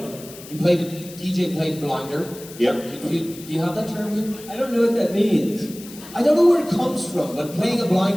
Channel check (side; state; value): left; noise; hiss, 17 dB below the sound